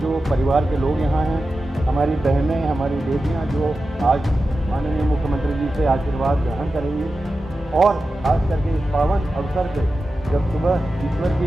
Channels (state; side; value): normal; both; correlation 0.92